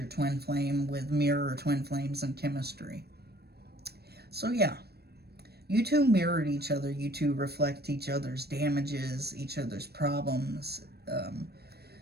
twin flame with mirror or twin flames and chemistry? So yeah, you two mirrored each other. You two reflect each other's damages, each other's problems.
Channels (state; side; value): late; left; 0.47 ms